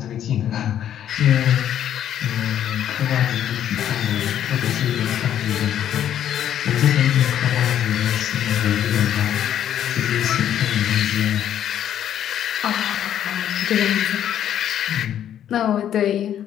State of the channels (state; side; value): quieter; right; 10.4 dB